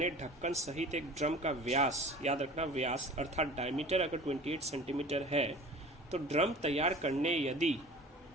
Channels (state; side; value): normal; both; correlation 0.41